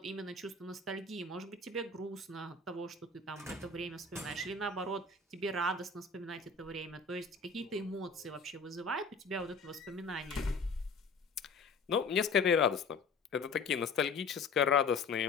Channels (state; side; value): quieter; right; 4.2 dB